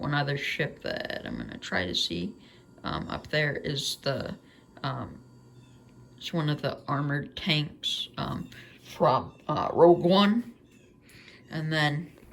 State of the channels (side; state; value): both; identical; correlation 1.00